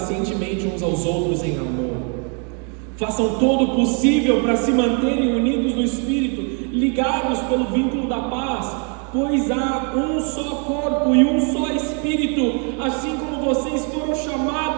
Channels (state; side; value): quieter; left; 38.8 dB